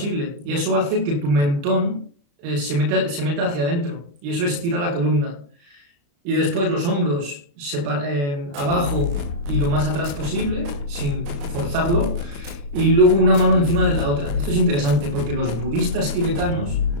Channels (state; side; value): late; left; 35 ms